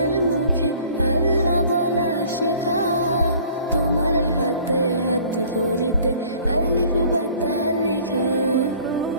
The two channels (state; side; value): inverted; both; correlation -0.52